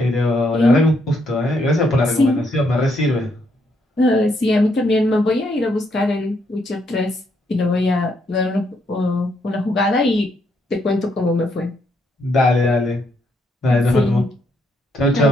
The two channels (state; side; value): normal; both; correlation 0.75